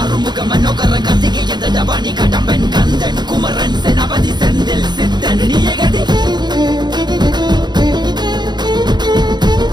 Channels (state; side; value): late; left; 0.21 ms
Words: அருமுக மனோகர கத்திகை எந்த டபானி கடம்பன் கந்தன் குமரன் செனபதி செந்தில் சித்தன் நீயகதி